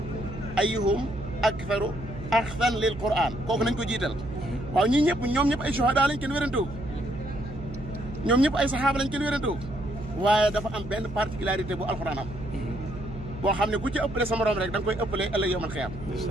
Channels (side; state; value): right; noise; hum, 12 dB below the sound